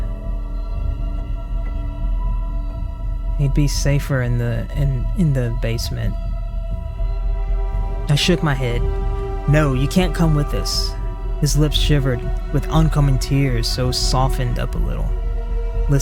He'd be safer in the basement. I shook my head. No, you can't come with us. His lips shivered with oncoming tears, so softened up a little.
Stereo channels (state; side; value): identical; both; correlation 1.00